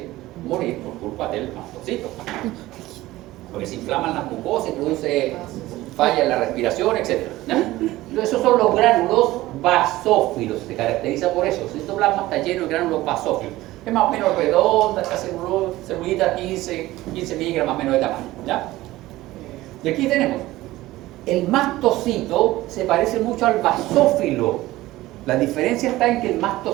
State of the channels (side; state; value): left; quieter; 17.2 dB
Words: morir por culpa del mastocito, porque se inflaman las mucosas y produce falla en la respiración, etc. Entonces, esos son los gránulos basófilos, se caracteriza por eso. El citoplasma está lleno de gránulos basófilos. Es más o menos redonda, esta celulita 15 miligramos más o menos de tamaño. ¿Ya? Y aquí tenemos, el mastocito se parece mucho al basófilo. La diferencia está en que el